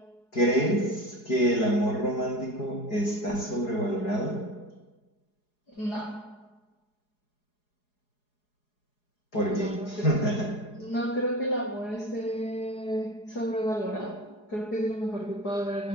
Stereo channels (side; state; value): right; late; 4.8 ms